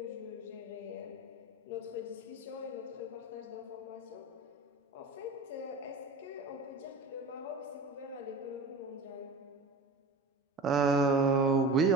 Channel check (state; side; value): quieter; left; 3.2 dB